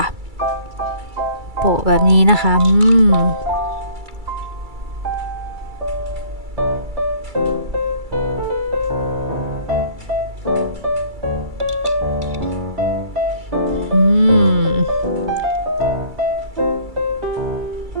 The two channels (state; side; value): late; left; 2.3 ms